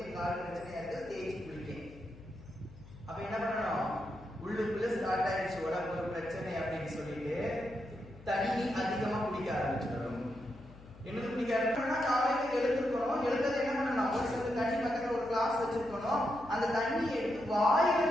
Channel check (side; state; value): left; noise; hum, 20 dB below the sound